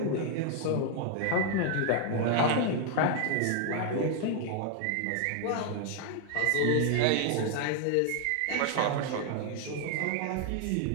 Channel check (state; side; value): different; both; correlation 0.00